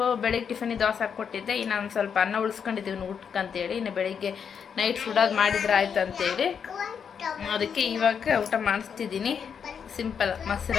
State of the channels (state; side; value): quieter; right; 7.1 dB